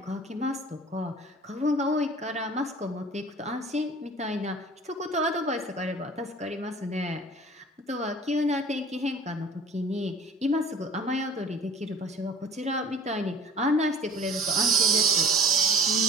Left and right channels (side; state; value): both; normal; correlation 0.46